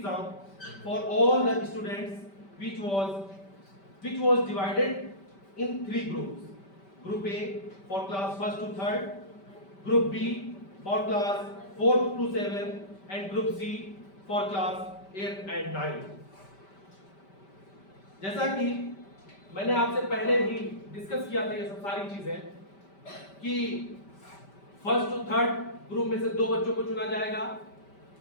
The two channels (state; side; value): late; right; 5.1 ms